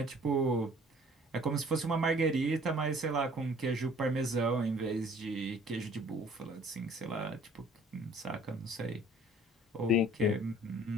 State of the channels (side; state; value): both; normal; correlation 0.54